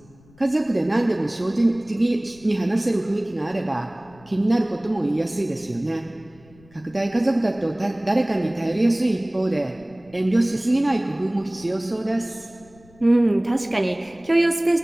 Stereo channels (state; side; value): noise; left; rumble, 27 dB below the sound